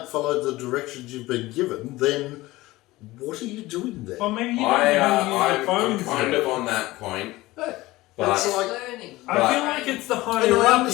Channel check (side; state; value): right; quieter; 18.9 dB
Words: follow the directions you've been given, then what are you doing there? Well, maybe you don't know how to use the I'm phones. kind yet. of on that point, Hey, but it's like, Learning. I feel like it's the and higher I up you